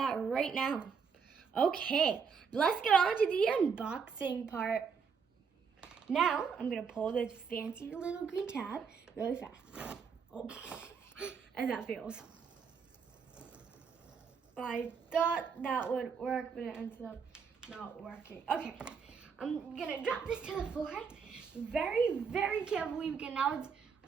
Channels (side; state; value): left; quieter; 6.1 dB